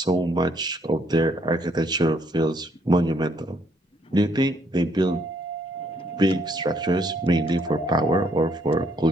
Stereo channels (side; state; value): both; normal; correlation 0.69